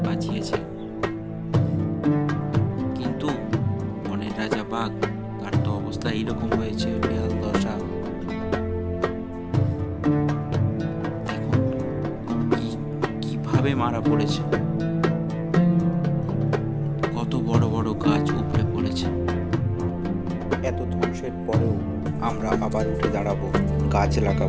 বাঁচিয়েছে, কিন্তু বনের রাজা বাঘ, তার তো অবস্থা এইরকম হয়েছে, বেহাল দশা। মারা পড়েছে, কত বড় বড় গাছ উপড়ে পড়েছে। এত ধ্বংসের পরেও আমরা আবার উঠে দাঁড়াবো, গাছ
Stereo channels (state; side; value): identical; both; correlation 1.00